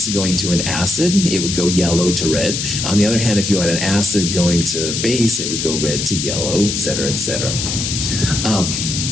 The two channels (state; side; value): noise; left; hiss, 2 dB below the sound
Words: going to an acid, it would go yellow to red. On the other hand, if you had an acid going to base, it would go red to yellow, et cetera, et cetera.